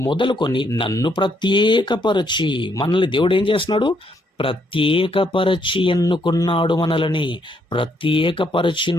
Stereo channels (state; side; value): normal; both; correlation 0.73